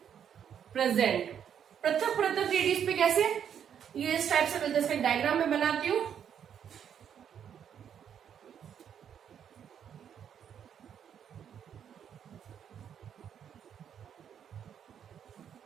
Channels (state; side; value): quieter; left; 8.6 dB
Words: प्रेजेंट। पृथक पृथक रेडियस पे कैसे, ये इस टाइप से मिलते हैं। इसका डायग्राम में बनाती हूं।